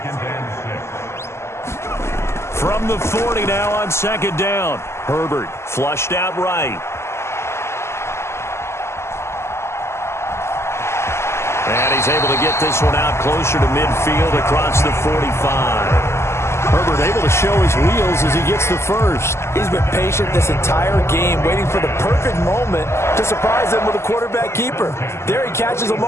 From the 40 now on 2nd down. Herbert flushed out right. And he's able to get this one out closer to midfield across the 45. Herbert able to show his wheels as he gets the first. He's been patient this entire game, waiting for the perfect moment to surprise him with a quarterback keeper. There he catches him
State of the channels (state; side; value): late; right; 0.13 ms